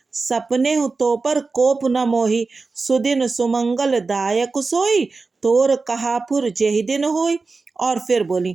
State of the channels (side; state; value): left; quieter; 4.0 dB